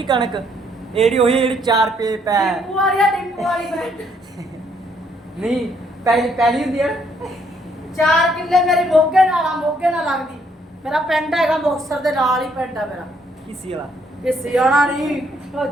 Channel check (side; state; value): both; normal; correlation 0.69